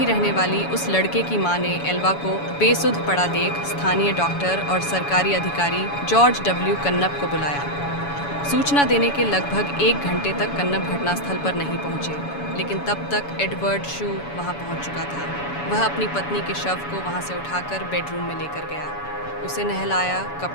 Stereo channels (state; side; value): late; right; 7.0 ms